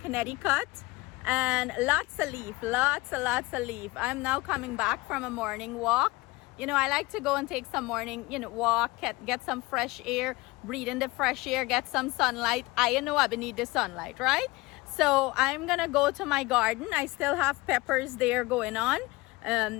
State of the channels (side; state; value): right; quieter; 21.9 dB